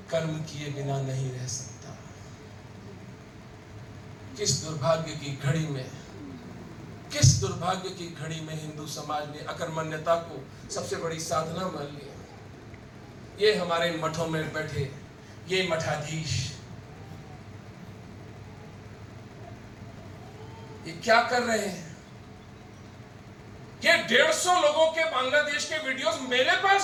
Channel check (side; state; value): both; identical; correlation 1.00